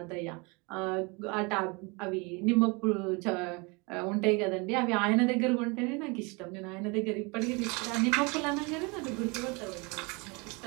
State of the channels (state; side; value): quieter; left; 28.8 dB